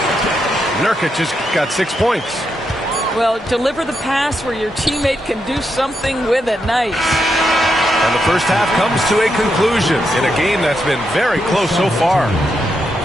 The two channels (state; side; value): normal; both; correlation 0.82